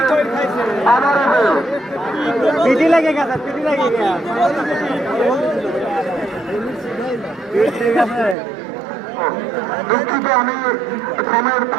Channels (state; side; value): drops out; left; at 8.3 s